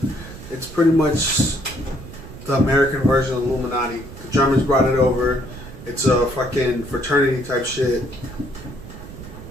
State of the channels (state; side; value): noise; right; rumble, 14 dB below the sound